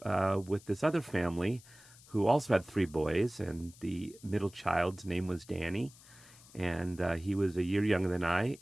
with this other family who also had 3 boys, and the middle child's name was Danny. And he was a year younger than I,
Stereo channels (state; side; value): noise; left; hiss, 23 dB below the sound